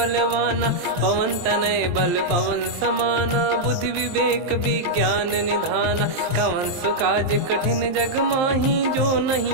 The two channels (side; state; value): left; late; 23 ms